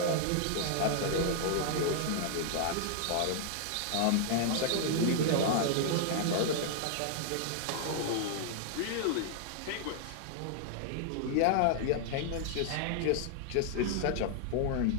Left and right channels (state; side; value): different; both; correlation -0.01